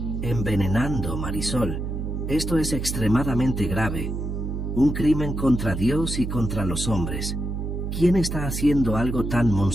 envenenando, Marisol. Esto es extremadamente grave. Un crimen contra Dios y contra los hombres. ¿Quién está haciendo algo tan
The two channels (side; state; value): right; noise; hum, 4 dB below the sound